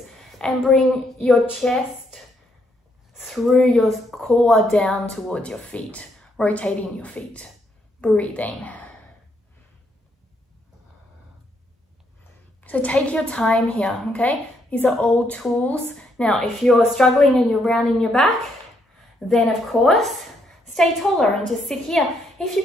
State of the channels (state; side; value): normal; both; correlation 0.74